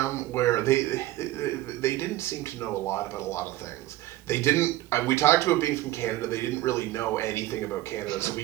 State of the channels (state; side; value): quieter; left; 16.0 dB